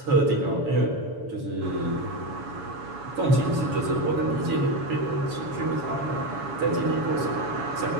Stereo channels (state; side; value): late; left; 7.1 ms